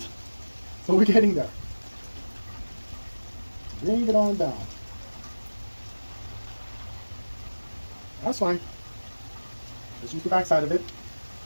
but we're getting there. Bring it on down. That's fine. Let's use the back side of it.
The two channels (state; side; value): inverted; both; correlation -1.00